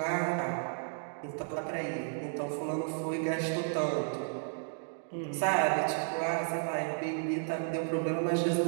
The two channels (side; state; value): left; silent; digital silence